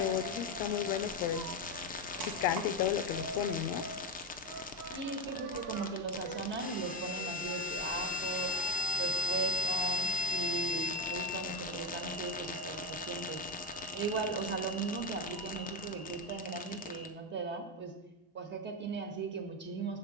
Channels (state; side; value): normal; both; correlation 0.11